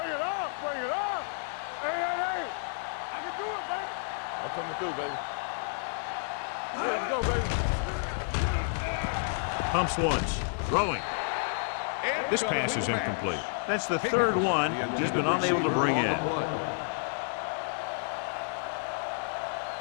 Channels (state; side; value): silent; right; digital silence